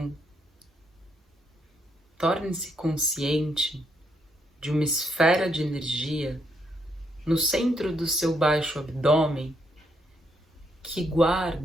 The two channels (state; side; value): normal; both; correlation 0.75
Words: torne-se consciente de uma esfera de energia no centro do seu baixo abdômen que